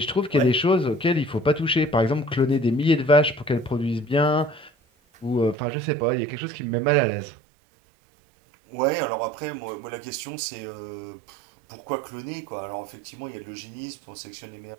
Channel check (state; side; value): drops out; left; at 5.6 s